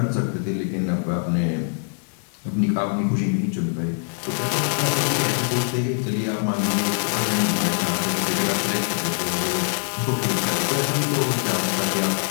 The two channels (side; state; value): right; silent; 56 dB below the other